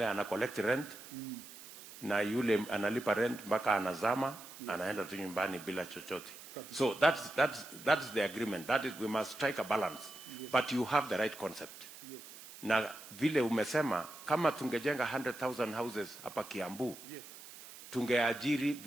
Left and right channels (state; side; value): noise; right; hiss, 16 dB below the sound